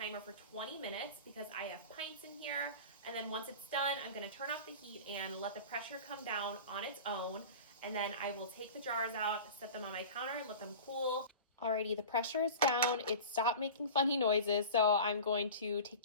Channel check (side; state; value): both; inverted; correlation -0.35